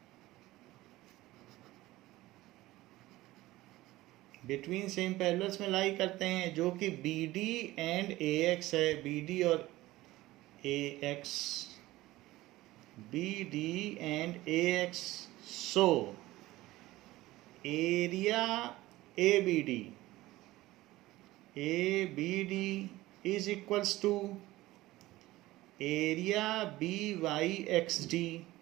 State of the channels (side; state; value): left; quieter; 17.7 dB